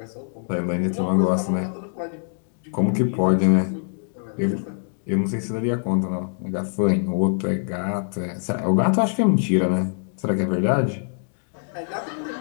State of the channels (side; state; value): right; silent; digital silence